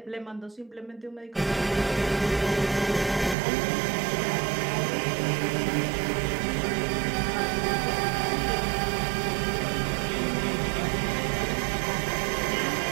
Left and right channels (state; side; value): drops out; left; at 3.4 s